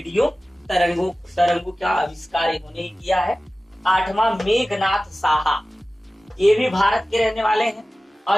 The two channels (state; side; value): normal; both; correlation 0.96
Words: तरंगों का आविष्कार इन्होंने ही किया है। 8वां मेघनाथ साहा। ये भी भारत के रहने वाले हैं